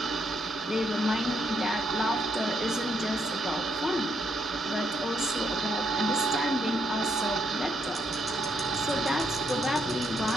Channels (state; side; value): normal; both; correlation 0.75